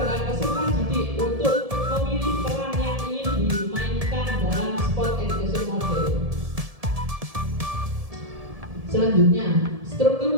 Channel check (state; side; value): late; left; 1.7 ms